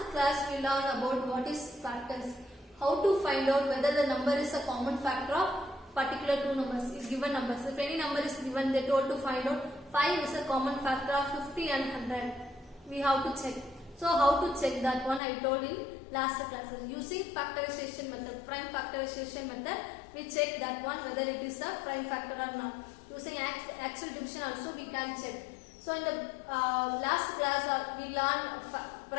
class we learned about what is factors, how to find out whether the number is a common factor of particular two numbers, given numbers. If any number is given, they told to find out 5 is a common factor of 50 and 100. We have to check. So how to check that one I told in last classes. Using factorization method, prime factorization method, we check that one whether it is a prime factor or not. Using actual division also we can check. So in the last class we learned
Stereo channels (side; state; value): right; drops out; at 15.2 s